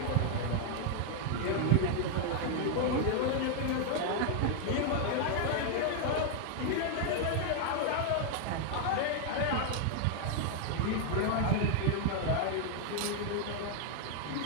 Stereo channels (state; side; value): different; both; correlation 0.00